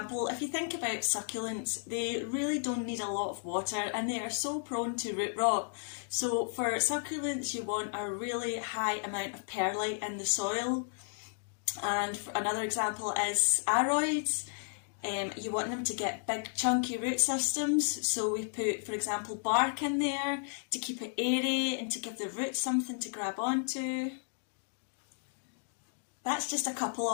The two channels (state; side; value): silent; right; digital silence